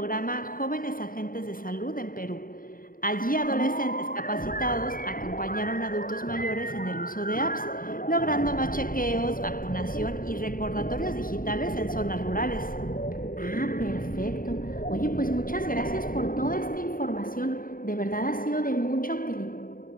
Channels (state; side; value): late; right; 0.41 ms